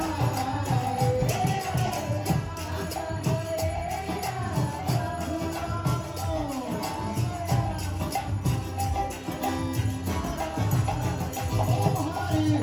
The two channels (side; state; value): both; identical; correlation 1.00